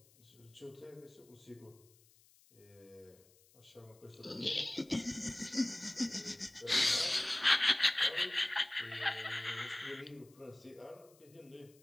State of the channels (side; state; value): left; noise; hiss, 28 dB below the sound